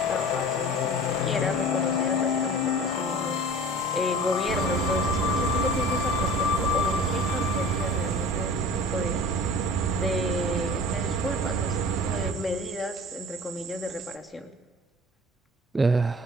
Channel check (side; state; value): both; normal; correlation 0.41